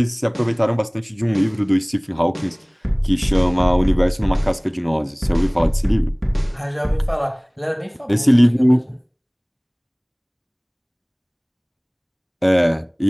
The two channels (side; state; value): both; identical; correlation 1.00